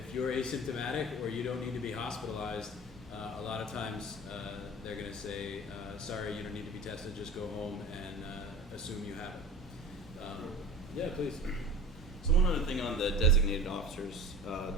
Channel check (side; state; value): both; normal; correlation 0.37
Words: you're asymptomatic or you don't need to be hospitalized, a lot of times they're going to say, sorry, you don't need to be tested, just go home and assume you have it. Yeah, please. So one other thing on the designated officers